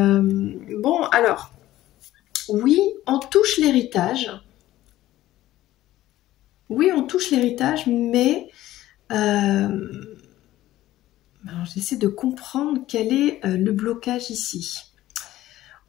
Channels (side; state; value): right; quieter; 14.9 dB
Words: alors, oui, on touche l'héritage. Oui, on touche l'héritage, mais j'essaie de comprendre quel est le blocage ici.